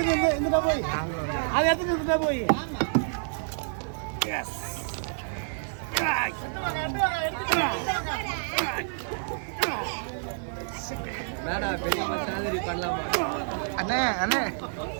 இருந்துட்டா போய் அது எடுத்துட்டு இருந்துட்டா போய் எஸ் மேடா பெரிய மாதிரி பண்ணலாமா அண்ணே அண்ணே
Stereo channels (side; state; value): left; silent; 59 dB below the other